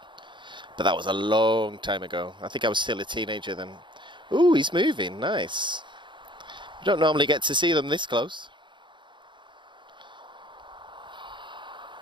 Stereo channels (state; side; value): late; left; 0.23 ms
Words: that was a long time ago. I think I was still a teenager then. Ooh, he's moving, nice. You don't normally get to see them this close.